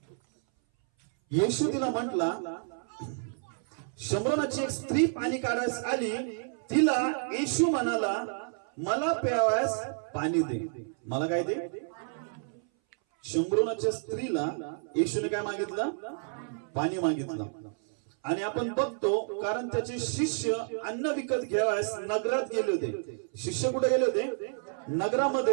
येशू तिला म्हटला, शंभरोनाची एक स्त्री पाणी काढायस आली, तिला येशू म्हणाला मला प्यावयास पाणी दे. मला काय दे? शंभरोनाच्या स्त्रीला येशूने काय मागितलं? पाणी मागितलं. आणि आपण बघतो कारण त्याचे शिष्य अन्न विकत घ्यावयास नगरात गेले होते. शिष्य कुठे गेले होते?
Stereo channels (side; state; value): left; silent; 58 dB below the other